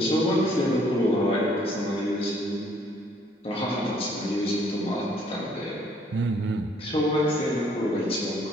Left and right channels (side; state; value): both; normal; correlation 0.63